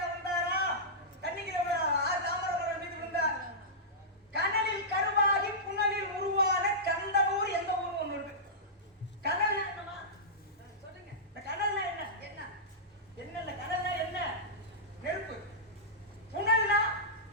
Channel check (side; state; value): both; normal; correlation -0.15